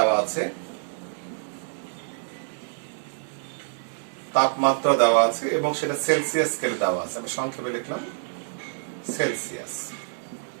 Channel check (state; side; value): silent; left; 58 dB below the other